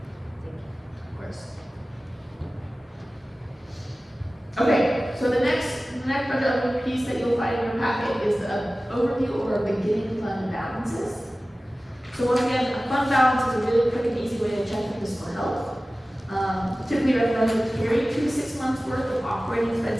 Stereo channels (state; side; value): normal; both; correlation 0.97